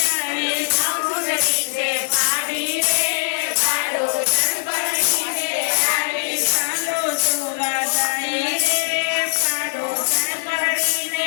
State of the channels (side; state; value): right; silent; digital silence